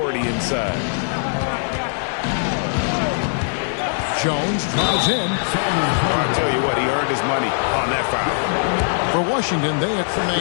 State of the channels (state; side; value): silent; right; digital silence